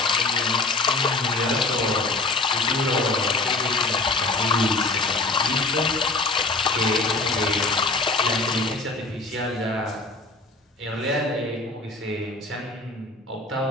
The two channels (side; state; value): right; quieter; 3.3 dB